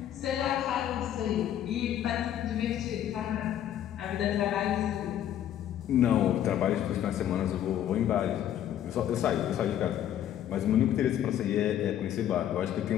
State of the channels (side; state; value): right; quieter; 10.9 dB